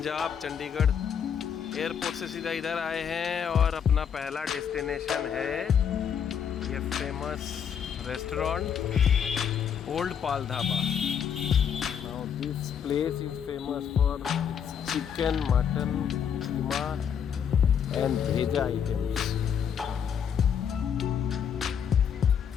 चंडीगढ़। एयरपोर्ट से सीधा इधर आए हैं और अपना पहला डेस्टिनेशन है ये famous restaurant old Pal dhaba. Now this place is famous for chicken, mutton, keema and भेजा आइटम्स।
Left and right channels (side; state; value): right; quieter; 7.9 dB